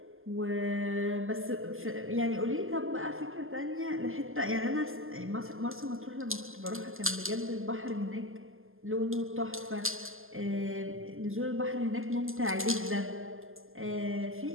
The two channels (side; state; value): left; late; 0.60 ms